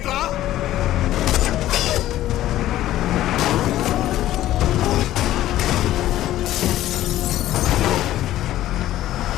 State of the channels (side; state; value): right; quieter; 13.9 dB